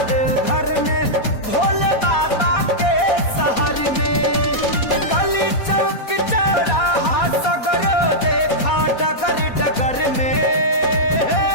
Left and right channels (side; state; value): right; late; 4.2 ms